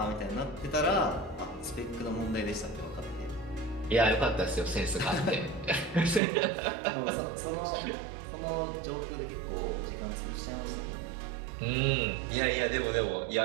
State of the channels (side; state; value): left; drops out; at 6.2 s